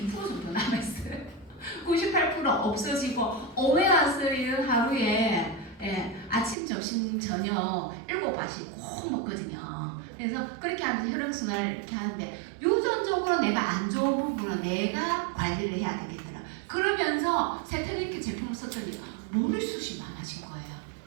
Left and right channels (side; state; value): left; drops out; at 6.6 s